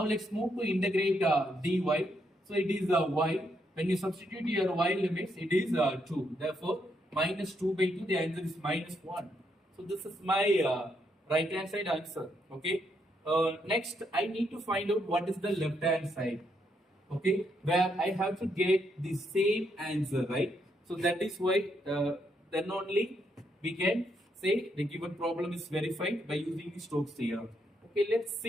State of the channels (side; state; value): both; normal; correlation 0.77